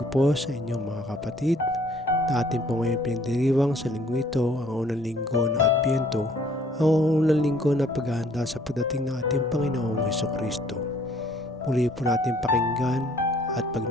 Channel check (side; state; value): both; normal; correlation 0.60